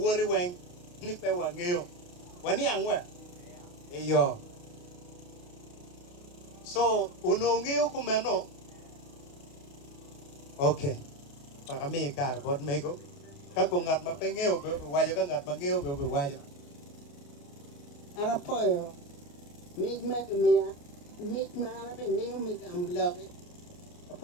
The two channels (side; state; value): right; late; 29 ms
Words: weng ni pe wa ngeo. Wani angwe. Eyo. So uno ngeo kumeno. Okay. Para mi kar bod mego. Kako ngat ma pe ngeo be wajo ka ngat ma ngeo be wajo. Ana poyo. Mig meg mia. Mig mana be mig am love.